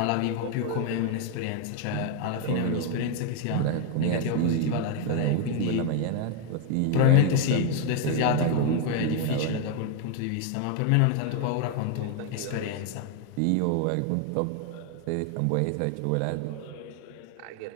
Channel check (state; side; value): different; both; correlation 0.01